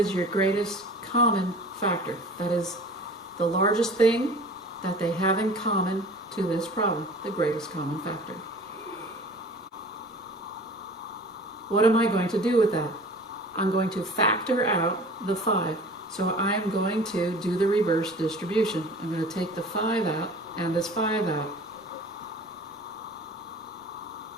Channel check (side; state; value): both; normal; correlation 0.43